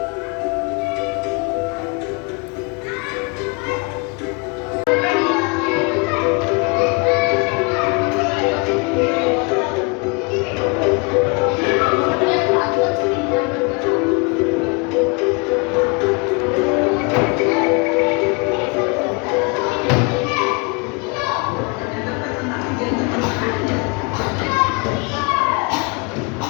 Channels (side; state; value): right; quieter; 31.8 dB